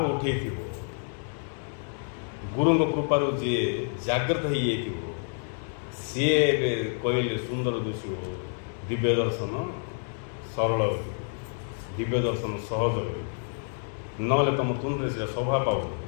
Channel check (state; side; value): silent; right; 59 dB below the other